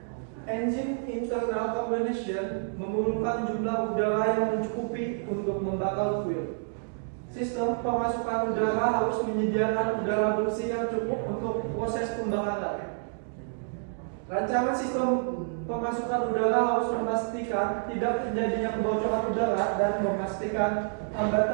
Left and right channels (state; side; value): silent; left; digital silence